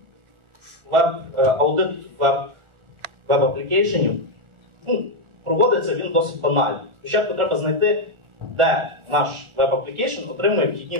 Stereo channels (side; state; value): left; late; 1.4 ms